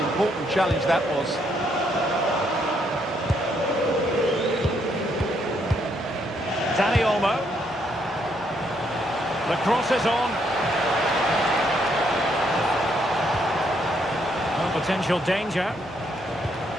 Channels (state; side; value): normal; both; correlation 0.73